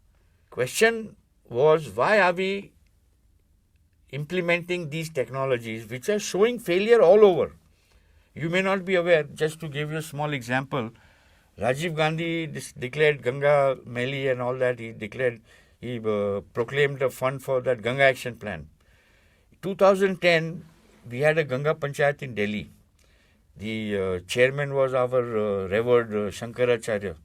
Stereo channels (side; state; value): both; identical; correlation 1.00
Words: Question was, why are we implementing these technologies which are showing failure all over? You may not be aware, just to give you a small example, Rajiv Gandhi declared Ganga Meli and all that. He proclaimed a fund for that Ganga Action Plan. 2010, we had a Ganga Panchayat in Delhi. The chairman was our revered Shankaracharya,